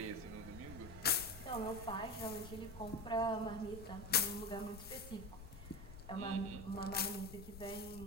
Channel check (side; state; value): left; noise; rumble, 13 dB below the sound